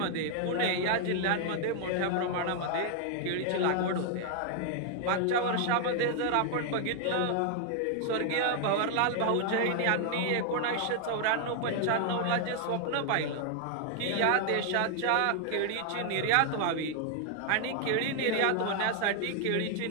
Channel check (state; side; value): different; both; correlation 0.00